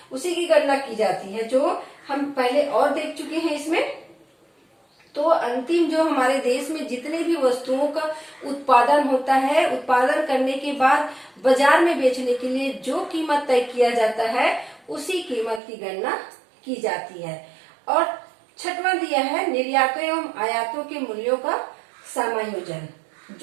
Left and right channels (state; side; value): drops out; left; at 15.6 s